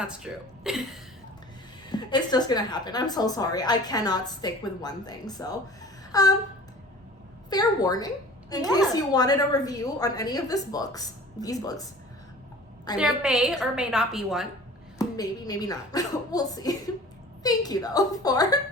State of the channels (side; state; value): both; normal; correlation 0.44